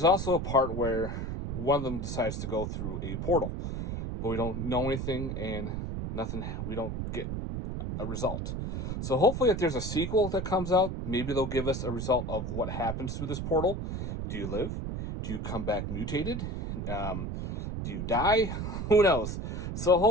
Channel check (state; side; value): noise; right; rumble, 4 dB below the sound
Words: also a part where one of them decides to go through a portal, but we don't know anything, and we don't get a result. So hopefully if there's a sequel that comes out, maybe they'll give us a result of what happens through this portal. Do you live? Do you come back mutated? Do you die? Who knows? So